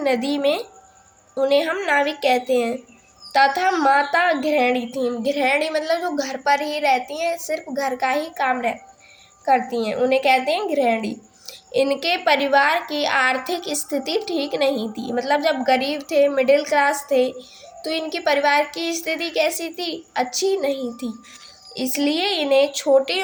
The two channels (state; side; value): identical; both; correlation 1.00